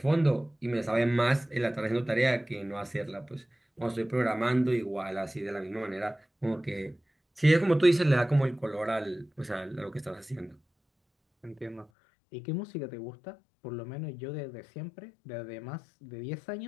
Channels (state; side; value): drops out; right; at 11.9 s